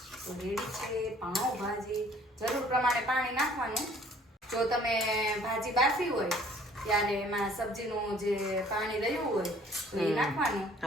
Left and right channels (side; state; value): both; normal; correlation 0.56